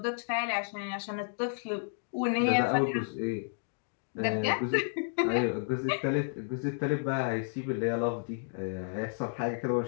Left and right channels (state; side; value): silent; right; digital silence